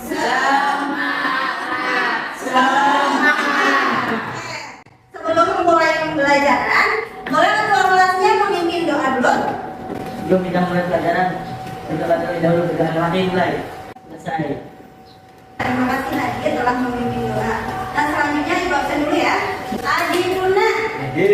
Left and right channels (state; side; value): identical; both; correlation 1.00